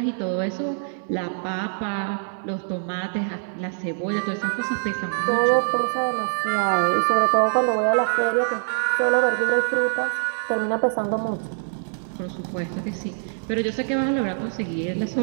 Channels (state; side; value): silent; left; digital silence